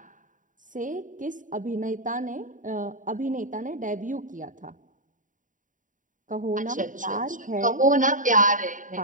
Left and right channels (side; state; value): left; late; 0.38 ms